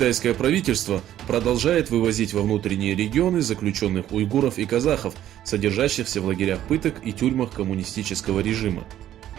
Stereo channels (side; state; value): left; quieter; 12.0 dB